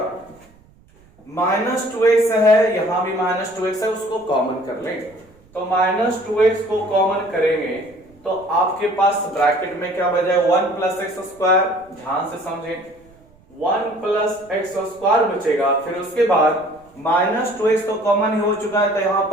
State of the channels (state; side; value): noise; right; rumble, 29 dB below the sound